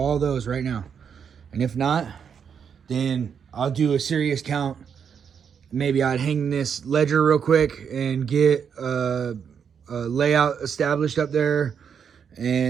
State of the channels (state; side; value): quieter; left; 7.2 dB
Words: those right now. And if not, then I'll do a serious count. Maybe I'd hang this ledger real quick and get a layout established up there,